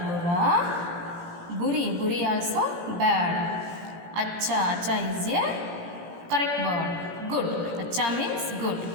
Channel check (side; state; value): left; late; 17 ms